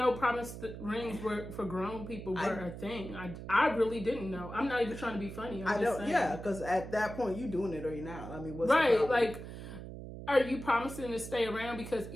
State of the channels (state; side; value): noise; right; hum, 10 dB below the sound